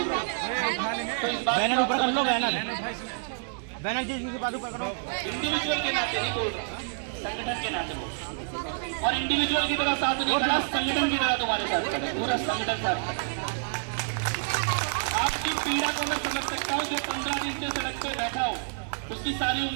रहा हूँ। तो इस बात बैनर ऊपर कर लो, बैनर जी के बाद ऊपर करो। इंडिविजुअल के नाते नहीं बोल रहा, संगठन के नाते बोल। और इंडिविजुअल की तरह साथ नहीं खड़ा, संगठन की तरह तुम्हारे साथ खड़ा, पूरा संगठन साथ खड़ा। आपकी पीड़ा को मैं समझ सकता हूँ। जो 15 दिन से सड़क पे बैठा हो उसकी सारी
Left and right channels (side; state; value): left; silent; digital silence